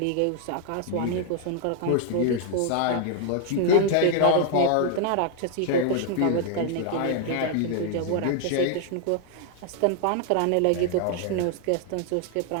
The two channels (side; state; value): both; different; correlation 0.00